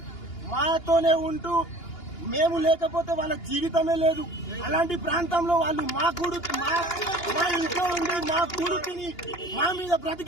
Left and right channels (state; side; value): late; right; 2.8 ms